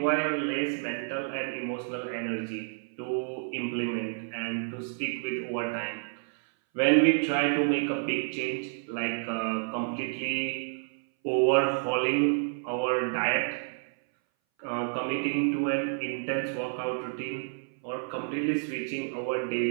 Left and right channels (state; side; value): silent; left; 58 dB below the other